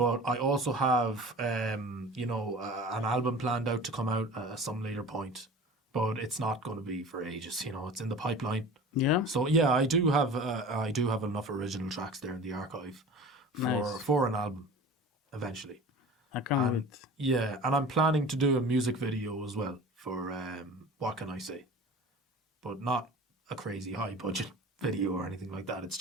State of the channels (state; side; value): normal; both; correlation 0.39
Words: I also have, an album planned out to come out at some later point. But it's not going to be for ages, it's in the pipeline. Yeah. So yeah, I do have enough original tracks there in the archive for an album eventually. I can't wait. Yeah, and I'm planning to do a music video as well for What Can I Say? But not a crazy high budget video or anything like that. It's